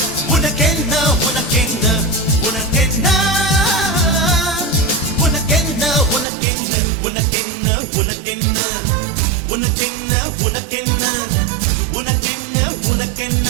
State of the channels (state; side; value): drops out; left; at 6.2 s